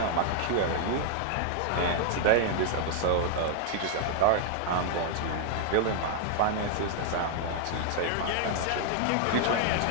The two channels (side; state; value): both; different; correlation 0.00